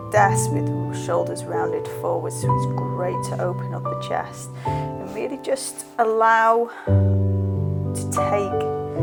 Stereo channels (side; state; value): both; identical; correlation 1.00